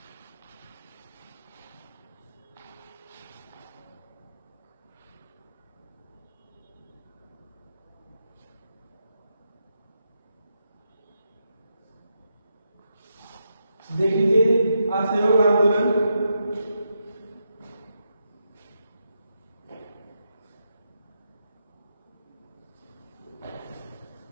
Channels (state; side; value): inverted; both; correlation -0.84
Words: देख लीजिए असहयोग आंदोलन।